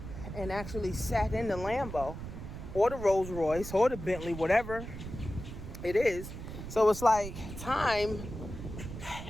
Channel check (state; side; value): noise; right; rumble, 9 dB below the sound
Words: and actually sat in the Lambo or the Rolls Royce or the Bentley, whatever it is? So it's like time